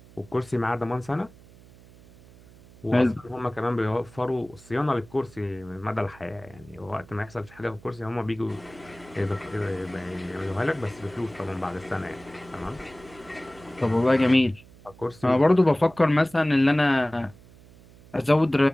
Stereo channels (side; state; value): right; noise; hum, 23 dB below the sound